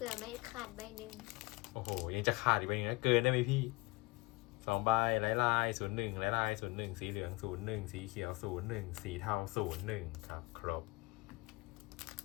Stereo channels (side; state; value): right; quieter; 24.6 dB